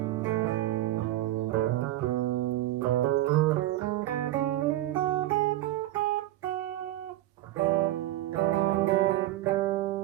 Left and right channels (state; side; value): quieter; left; 15.1 dB